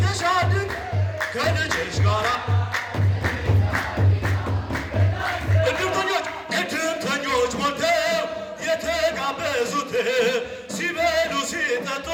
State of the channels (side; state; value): both; identical; correlation 1.00